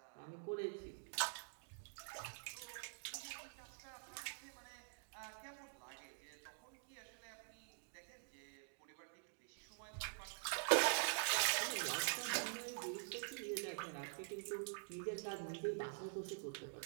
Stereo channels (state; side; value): silent; left; digital silence